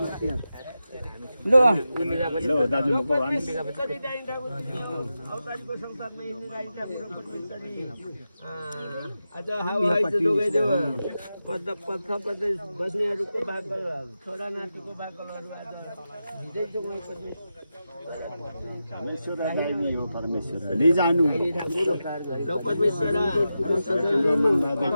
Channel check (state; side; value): inverted; both; correlation -0.90